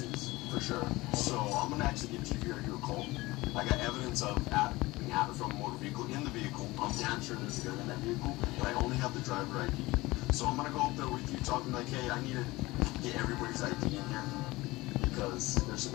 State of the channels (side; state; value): right; quieter; 20.4 dB